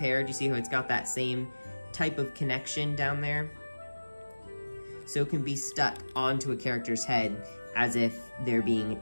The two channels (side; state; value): both; inverted; correlation -1.00